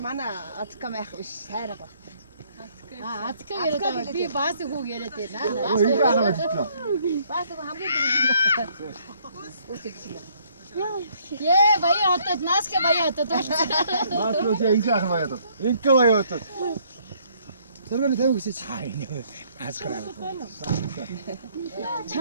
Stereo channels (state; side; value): inverted; both; correlation -0.65